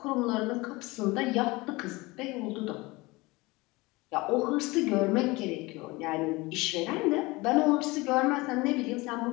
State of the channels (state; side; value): quieter; right; 22.8 dB